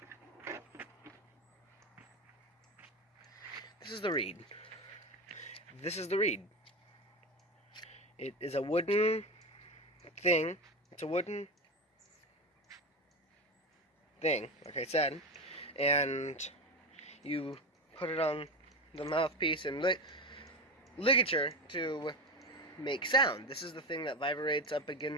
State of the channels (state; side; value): normal; both; correlation 0.20